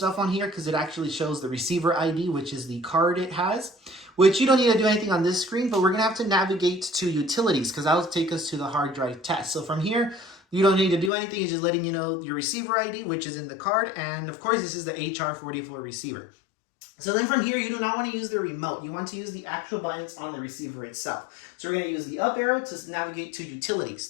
on here because it actually shows the receiver ID, which is the card it has, which you don't need to do anything on this screen, but we're going to have to navigate to utilities because that'll take us to the hard drive test. So from here, you don't need to do anything. It's just letting you know your receiver ID, which is in the card. And of course, this is the HR44 receiver. So then from here, you do not want to use the remote. You want to use the actual buttons on the receiver itself. So we're going to use the up arrow to navigate to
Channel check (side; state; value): right; drops out; at 11.1 s